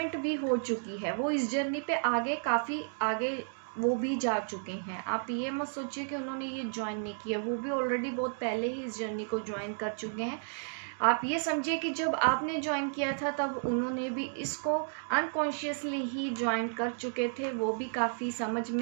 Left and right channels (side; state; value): left; silent; digital silence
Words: भी हो चुकी है। वो इस जर्नी पे आगे, काफ़ी आगे वो भी जा चुके हैं। आप ये मत सोचिए कि उन्होंने ये ज्वाइन नहीं किया, वो भी ऑलरेडी बहुत पहले ही इस जर्नी को ज्वाइन कर चुके हैं। आप ये समझिए कि जब आपने ज्वाइन किया था तब उन्होंने भी इसको अनकॉन्शियसली ही ज्वाइन कर चुके थे। वो भी काफ़ी समझ